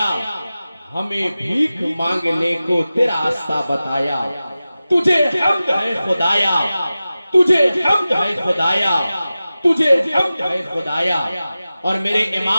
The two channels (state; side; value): inverted; both; correlation -0.95